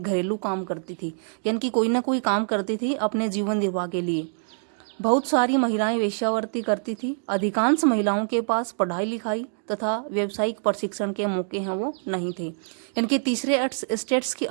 घरेलू काम करती थी, यानी कि कोई ना कोई काम करती थी अपने जीवन निर्वाह के लिए। बहुत सारी महिलाएं वेश्यावृत्ति करती थी। अधिकांश महिलाओं के पास पढ़ाई लिखाई तथा व्यावसायिक प्रशिक्षण के मौके हैं वो नहीं थे। इनके तीसरे स्टेट्स की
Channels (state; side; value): silent; left; digital silence